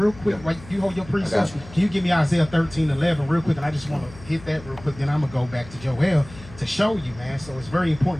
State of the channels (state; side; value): noise; left; hum, 18 dB below the sound